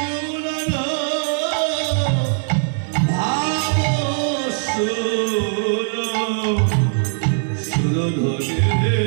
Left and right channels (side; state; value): left; silent; 65 dB below the other